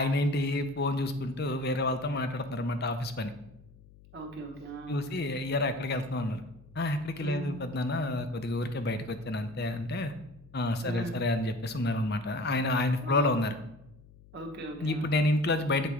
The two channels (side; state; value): left; noise; hum, 23 dB below the sound